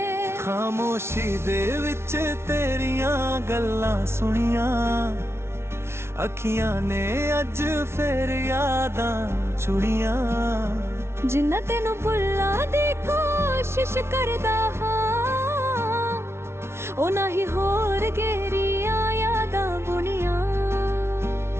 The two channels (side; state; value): left; late; 0.12 ms